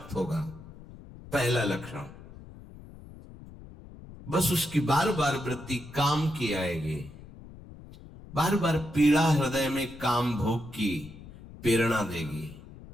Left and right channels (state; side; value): noise; left; rumble, 17 dB below the sound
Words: होगा, पहला लक्षण। बस उसकी बार बार वृत्ति काम की आएगी, बार बार पीड़ा हृदय में काम भोग की प्रेरणा देगी।